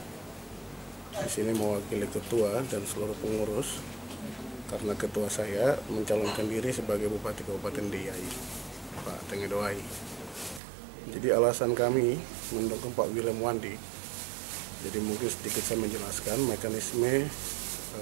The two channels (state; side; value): drops out; left; at 10.6 s